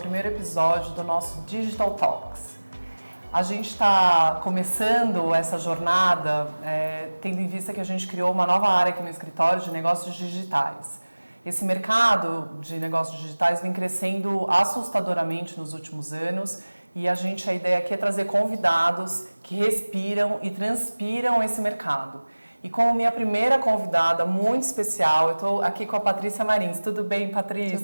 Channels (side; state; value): both; inverted; correlation -1.00